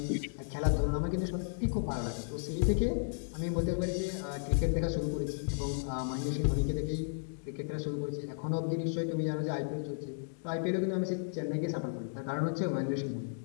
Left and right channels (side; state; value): right; silent; digital silence